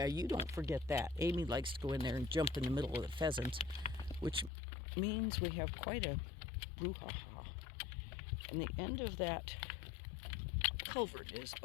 you don't forget that. Amy likes to go in there and jump in the middle of the pheasants, which means we have quite a brouhaha. And the end of that culvert is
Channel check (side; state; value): right; drops out; at 4.5 s